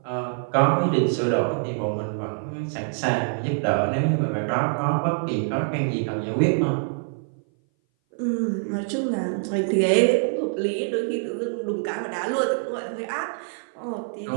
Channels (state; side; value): silent; left; 58 dB below the other